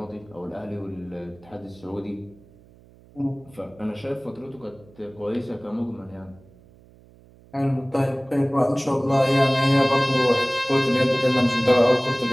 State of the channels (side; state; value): right; noise; hum, 26 dB below the sound